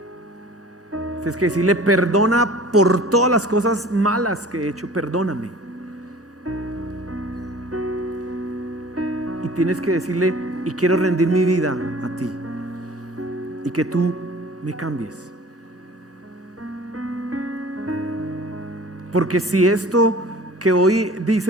Tienes que decirle, perdona por todas las cosas malas que he hecho, perdóname. Y tienes que decirle, y quiero rendir mi vida a ti, y que tú me cambies. Porque si esto que hoy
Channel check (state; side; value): normal; both; correlation 0.45